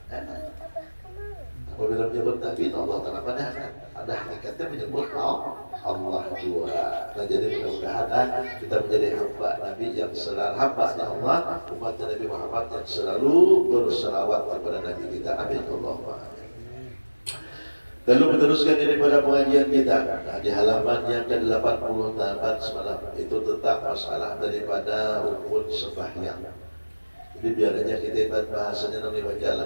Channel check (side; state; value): both; inverted; correlation -1.00